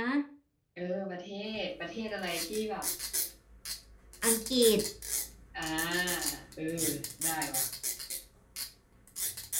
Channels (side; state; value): both; identical; correlation 1.00